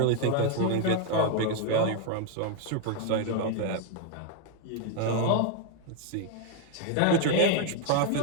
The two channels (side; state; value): both; different; correlation 0.00